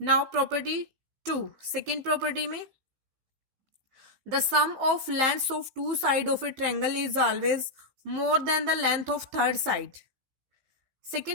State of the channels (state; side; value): late; left; 15 ms